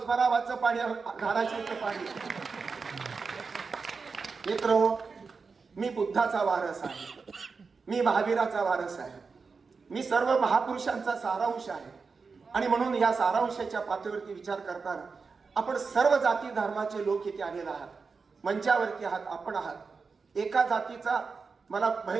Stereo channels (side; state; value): left; quieter; 4.8 dB